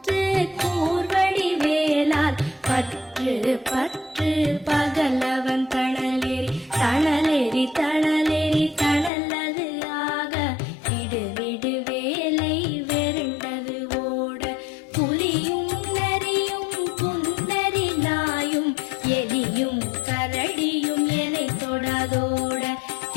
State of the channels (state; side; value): drops out; right; at 9.1 s